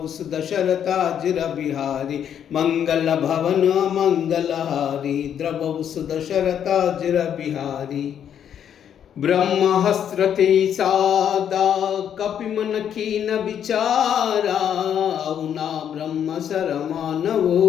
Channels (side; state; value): right; quieter; 9.1 dB